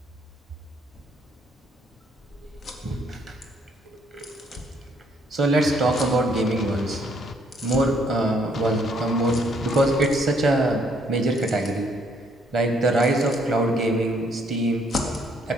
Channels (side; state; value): both; normal; correlation 0.67